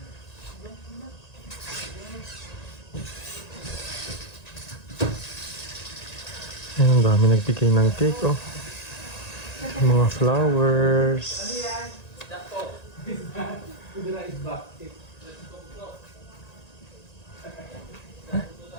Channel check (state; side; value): late; right; 1.9 ms